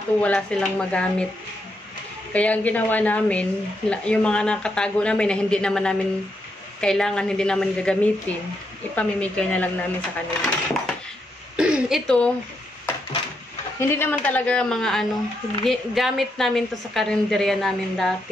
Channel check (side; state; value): both; normal; correlation 0.80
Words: wala silang magamit. Kaya ang ginawa namin, yung mga nakatago namin na hindi naman namin kailangan, hindi naman gagamitin, ipamimigay na lang namin sa kanila. Ito, hindi naman talaga mga gamit namin to sa karinderya namin